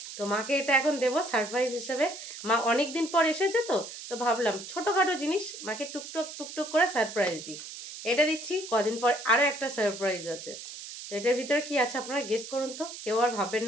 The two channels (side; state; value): right; noise; hiss, 11 dB below the sound